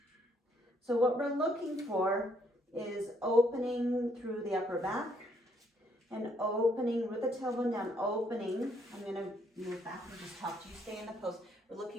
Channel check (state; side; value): normal; both; correlation 0.70